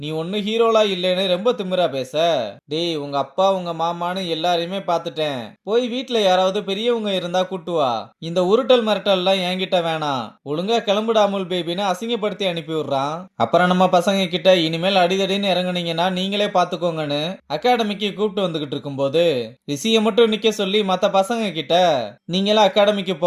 நீ ஒண்ணு ஹீரோலா இல்லைன்னு ரொம்ப திமிரா பேச. டேய், உங்க அப்பா உங்க மாமான்னு எல்லாரையுமே பாத்துட்டேன், போய் வீட்ல யாராவது பெரியவங்க இருந்தா கூட்டு வா, இந்த உருட்டல் மிரட்டல் எல்லாம் என்கிட்ட வேணாம், ஒழுங்கா கிளம்புடா அமுல் பேபின்னு அசிங்கப்படுத்தி அனுப்பி விடுறான். அப்புறம் நம்ம பசங்க கிட்ட இனிமேல் அடிதடின்னு இறங்குனீங்கன்னா நீங்களே பாத்துக்கோங்கன்னு அகாடமிக்கு கூப்பிட்டு வந்துகிட்டு இருக்கும்போது ரிஷிய மட்டும் நிக்க சொல்லி மத்த பசங்க கிட்ட, நீங்களே அகாடமிக்கு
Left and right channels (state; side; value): identical; both; correlation 1.00